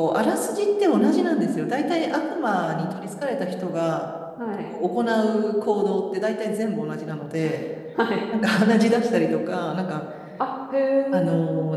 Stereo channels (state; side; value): identical; both; correlation 1.00